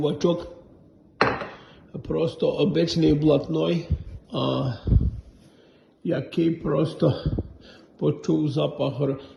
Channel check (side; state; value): both; identical; correlation 1.00